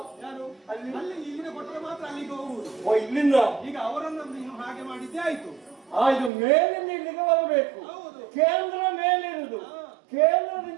ಯಾರು? ಅಲ್ಲಿ ಇಲ್ಲಿನ ಕೊಟ್ಟರೆ ಮಾತ್ರ ಅಲ್ಲಿಗೆ ಹೋಗುವುದು. ಓ, ಇಲ್ಲಿಂದ ಈಗ ಅವರನ್ನು ನೀನು ಹಾಗೆ ಮಾಡಿದ್ದೇ ಆಯ್ತು. ಇದು ಮೇಲಿಂದ ಇಲ್ಲಿಗೆ ಬರಬೇಕು. ಹೌದು. ಕೇಂದ್ರ ಮೇಲಿರುವುದು,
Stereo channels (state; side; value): drops out; left; at 6.3 s